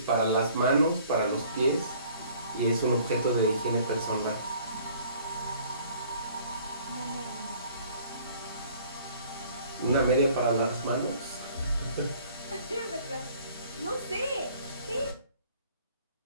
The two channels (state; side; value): inverted; both; correlation -0.55